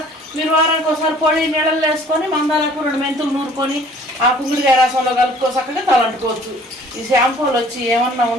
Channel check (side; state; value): both; normal; correlation 0.53